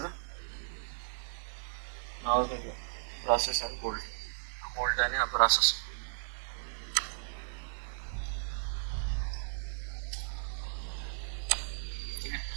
नाव ब्रासेस आणि बोल्ट. बोल्ट आणि हा ब्रासेस.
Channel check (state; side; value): silent; left; digital silence